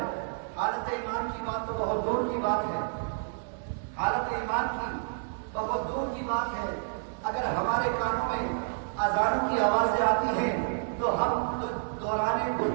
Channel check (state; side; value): silent; left; digital silence